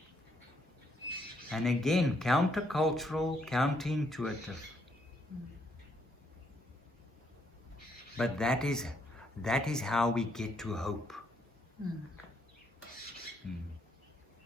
And again, countercultural, counterintuitive. But that is how we get to hope.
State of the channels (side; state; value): both; normal; correlation 0.73